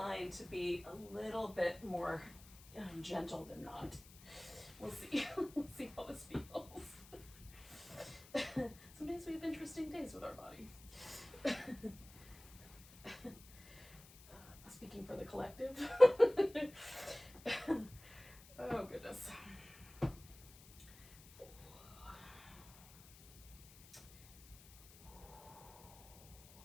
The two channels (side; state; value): left; noise; hiss, 20 dB below the sound